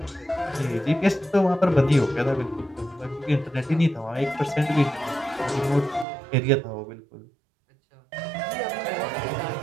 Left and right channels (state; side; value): drops out; left; at 6.1 s